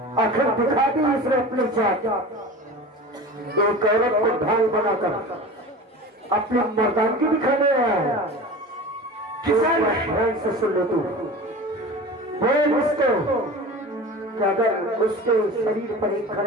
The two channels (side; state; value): both; normal; correlation 0.34